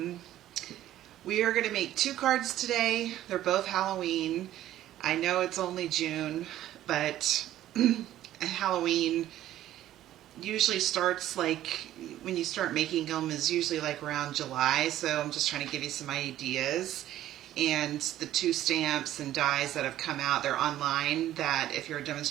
We are going to make 2 cards today. They're both Halloween. I know it's only June, but Halloween usually starts like when you start making them is usually like around July, so I'm just trying to give you some ideas. And the 2 stamps and dies that have come out, they're online, that if you're a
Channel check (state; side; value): quieter; left; 13.1 dB